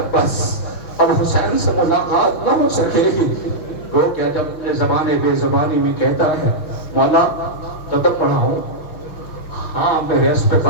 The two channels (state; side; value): late; right; 6.1 ms